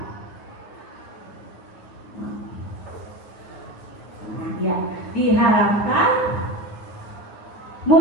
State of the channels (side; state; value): right; late; 9.5 ms